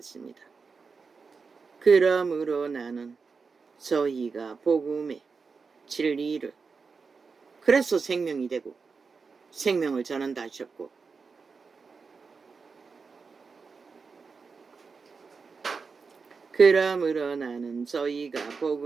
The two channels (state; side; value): quieter; left; 4.9 dB